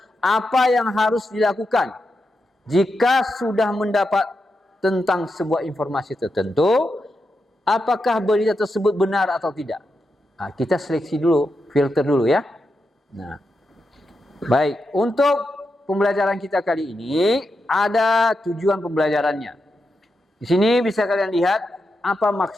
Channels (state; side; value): normal; both; correlation 0.87